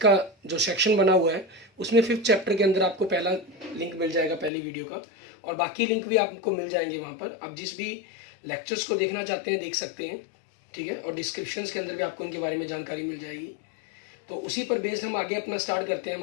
जो सेक्शन बना हुआ है उसमें 5th चैप्टर के अंदर आपको पहला लिंक मिल जाएगा, पहली वीडियो का, और बाकी लिंक भी आपको मिल जाएंगे वहाँ पर। आप जिस भी लेक्चर्स को देखना चाहते हैं देख सकते हैं, ठीक है, और डिस्क्रिप्शंस के अंदर भी आपको इनके बारे में जानकारी मिल जाएगी। तो उसी पर बेस्ड हम आगे अपना स्टार्ट करते हैं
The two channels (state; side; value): drops out; right; at 4.5 s